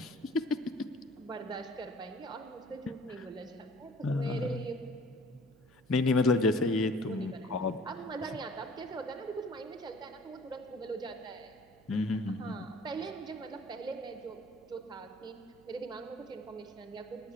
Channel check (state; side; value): noise; right; hum, 27 dB below the sound